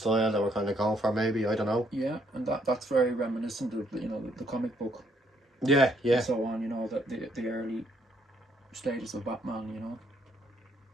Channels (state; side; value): normal; both; correlation 0.70